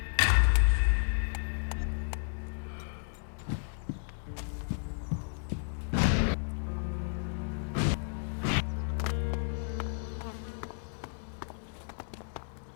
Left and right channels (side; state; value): right; silent; digital silence